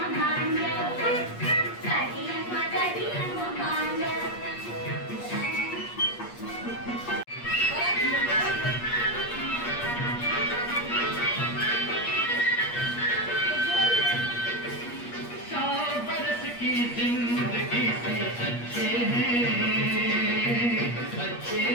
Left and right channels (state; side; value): late; right; 8.4 ms